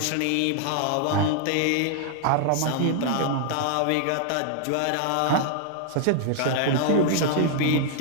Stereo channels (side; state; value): both; different; correlation 0.00